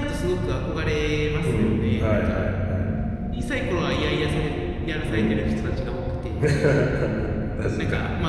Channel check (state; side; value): identical; both; correlation 1.00